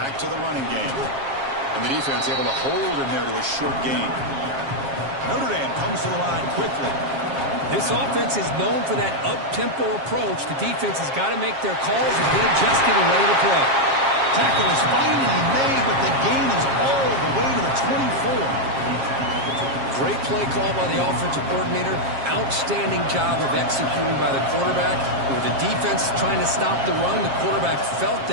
to the running game. And the defense able to hold him there to a short gain. Notre Dame comes to the line quickly. This offense is known for that up-tempo approach. The defense has got to make their calls and get adjusted and ready to play. Tackle is finally made, but the gain is all the way to the 24. Great play call by the offensive coordinator. Outstanding job of executing by the quarterback. With the defense trying to stop the run, the quarterback felt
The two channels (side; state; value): left; late; 7.4 ms